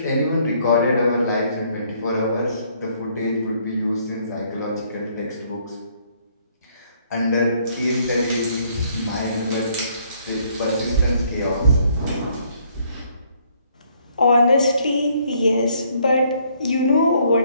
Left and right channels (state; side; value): inverted; both; correlation -0.66